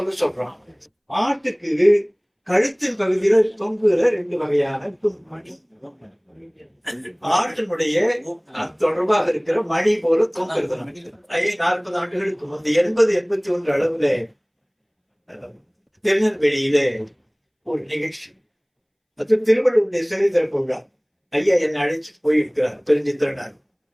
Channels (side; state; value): both; identical; correlation 1.00